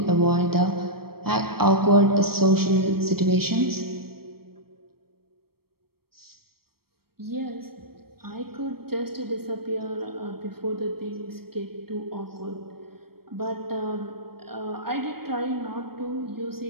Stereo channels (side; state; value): left; late; 0.94 ms